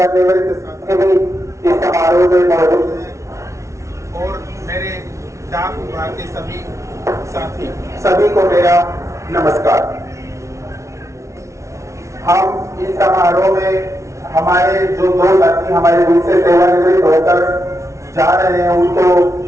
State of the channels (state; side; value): late; left; 0.14 ms